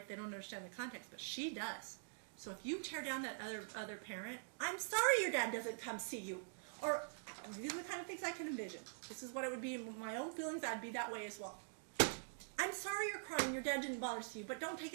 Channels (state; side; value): silent; left; digital silence